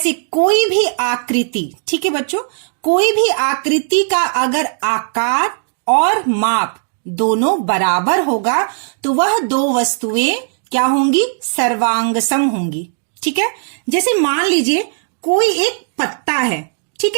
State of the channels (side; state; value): left; silent; digital silence